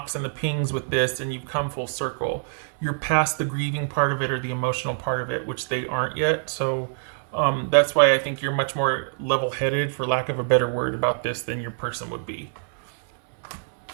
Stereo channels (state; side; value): silent; left; 62 dB below the other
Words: and the pings with this, and you've come full circle. You're past the grieving part of it or the emotional part of it, which they aren't yet. So that's why I think you're much more level-headed, for lack of a better word, about this than your person would be.